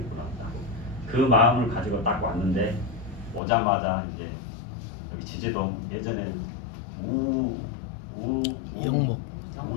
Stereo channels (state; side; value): drops out; right; at 3.4 s